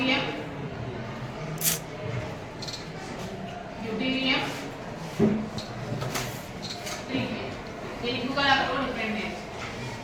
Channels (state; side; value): identical; both; correlation 1.00